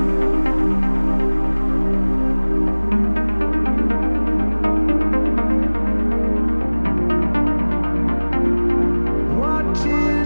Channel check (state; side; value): inverted; both; correlation -1.00